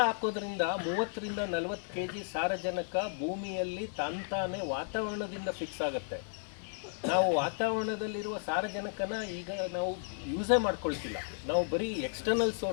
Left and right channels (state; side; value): silent; right; 55 dB below the other